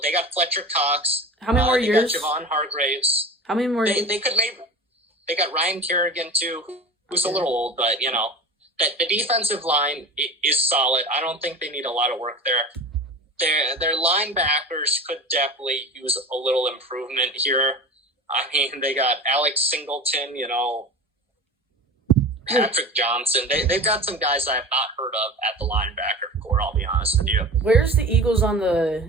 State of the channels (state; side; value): normal; both; correlation 0.33